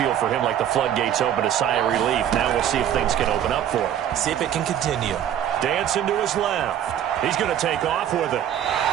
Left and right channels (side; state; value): left; quieter; 10.2 dB